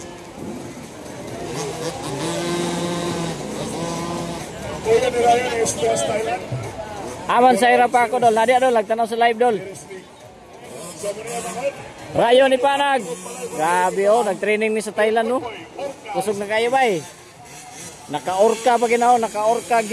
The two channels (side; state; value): both; identical; correlation 1.00